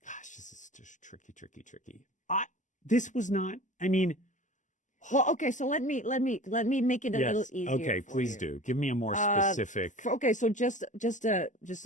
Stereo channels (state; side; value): late; right; 0.36 ms